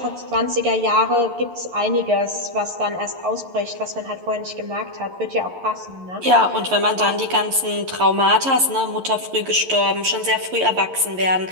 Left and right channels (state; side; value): late; left; 11 ms